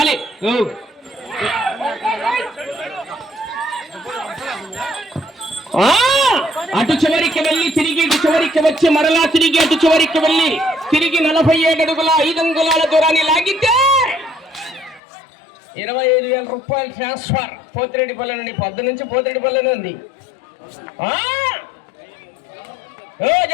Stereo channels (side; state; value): right; drops out; at 15.0 s